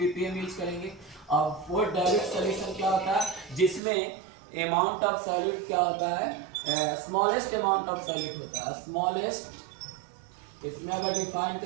यूज करेंगे। और फॉर डाइल्यूट सॉल्यूशन क्या होता है, जिसमें अमाउंट ऑफ सॉल्यूट क्या होता है, स्मॉलेस्ट अमाउंट ऑफ सॉल्यूट होता है, स्मॉलेस्ट, इसमें अगर डिफाइन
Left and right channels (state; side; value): drops out; left; at 3.8 s